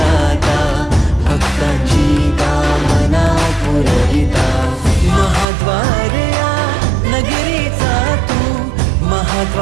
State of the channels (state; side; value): drops out; left; at 5.5 s